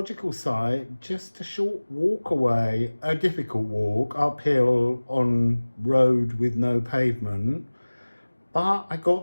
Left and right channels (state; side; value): inverted; both; correlation -1.00